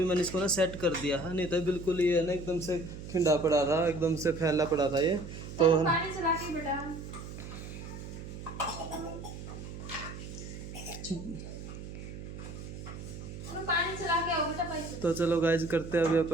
मैंने इसको ना सेट कर दिया है, नहीं तो बिल्कुल ये है ना एकदम से खिंडा पड़ा था, एकदम से फैला पड़ा था ये। तो पानी चला के बेटा। पानी चला के आओ बेटा पैसे। तो चलो गाइज करते हैं अभी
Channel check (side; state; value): right; noise; hum, 10 dB below the sound